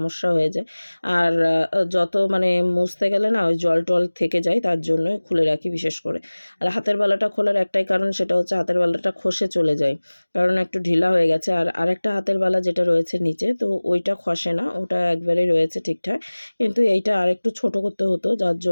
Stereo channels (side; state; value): both; inverted; correlation -1.00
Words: হয়ে যায়। আর যত মানে মুছতে গেলে না ওই জল টল থেকে যায়, তার জন্য খুলে রাখি বিশেষ করে। আর হাতের বালাটা খোলার একটাই কারণ, সেটা হচ্ছে হাতের বালাটা খসে চলে যায়, কারণ একটু ঢিলা হয়ে গেছে। আর আরেকটা হাতের বালা যেটা রয়েছে নিচে, তো ওইটা খসে না, ওটা একবারেই রয়েছে ঠিকঠাক, কিন্তু এইটা আরেকটু ছোট করতে হতো, যার